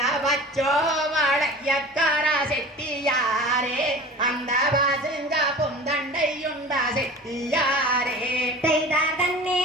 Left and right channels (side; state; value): both; normal; correlation 0.38